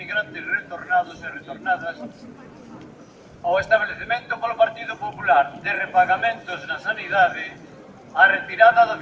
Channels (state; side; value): identical; both; correlation 1.00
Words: retornados e retornadas, o establecemento polo Partido Popular de repagamentos na sanidade, a retirada do